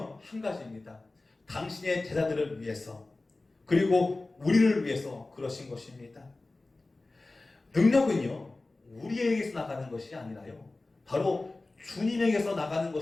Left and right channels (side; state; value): right; quieter; 3.1 dB